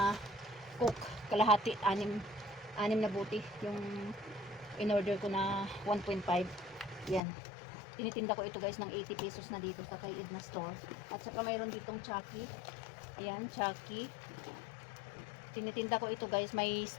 cook, kalahati, 6 na buti. Yung in-order ko na 1.5. Yan. Tinitinda ko ito guys ng 80 pesos na dito sa kay Edna Store. At saka mayroon ditong Chucky. Ayan, Chucky. Tinitinda ko ito guys. May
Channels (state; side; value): drops out; right; at 7.2 s